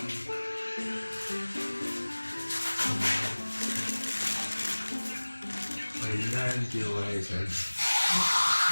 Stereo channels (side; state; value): both; inverted; correlation -1.00